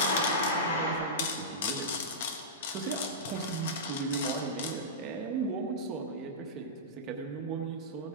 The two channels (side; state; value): both; normal; correlation -0.16